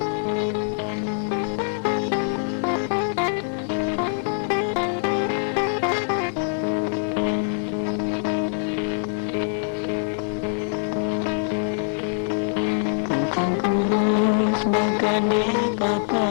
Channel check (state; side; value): silent; right; 63 dB below the other